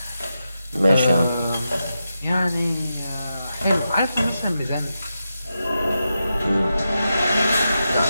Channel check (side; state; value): both; inverted; correlation -0.88